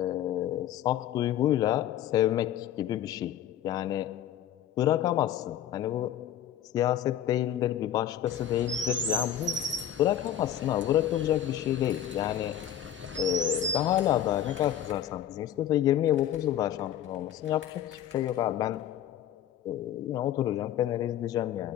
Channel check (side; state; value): right; quieter; 10.6 dB